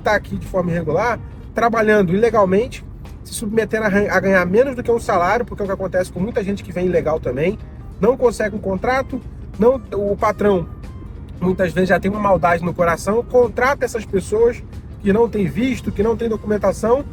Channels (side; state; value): both; identical; correlation 1.00